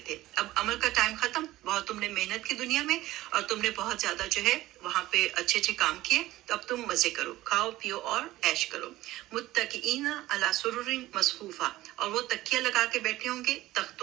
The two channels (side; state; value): left; quieter; 16.6 dB